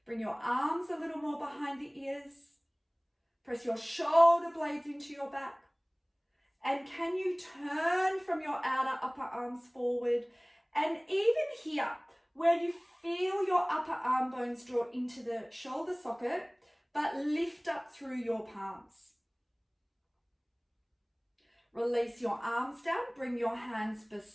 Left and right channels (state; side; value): identical; both; correlation 1.00